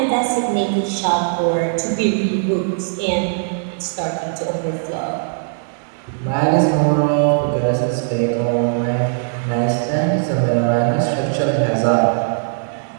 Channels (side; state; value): left; silent; digital silence